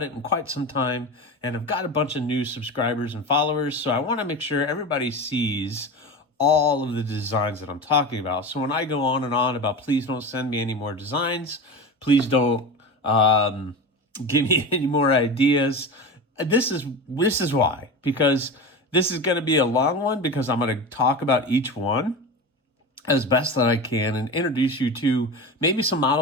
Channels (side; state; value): both; normal; correlation 0.26